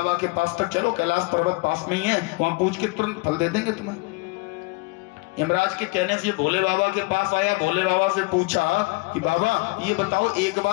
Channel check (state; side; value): quieter; right; 26.1 dB